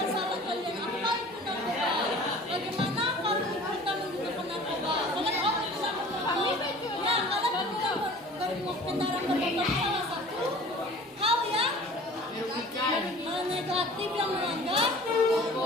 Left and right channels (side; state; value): both; normal; correlation 0.45